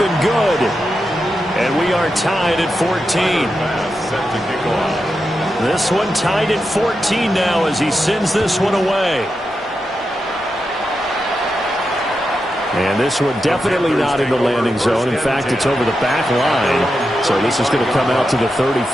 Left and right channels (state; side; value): normal; both; correlation 0.88